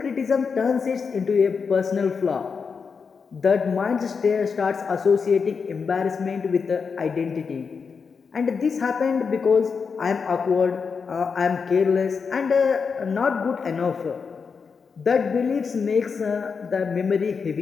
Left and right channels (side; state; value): right; quieter; 5.6 dB